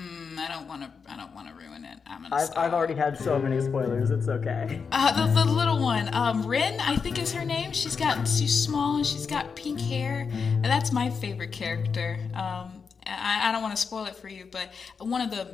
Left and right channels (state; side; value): quieter; right; 5.6 dB